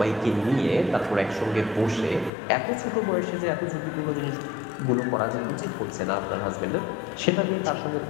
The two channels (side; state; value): right; drops out; at 2.3 s